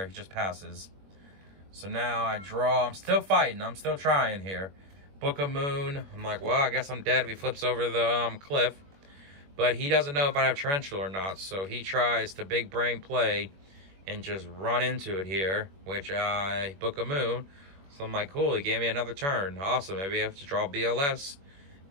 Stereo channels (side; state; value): left; late; 21 ms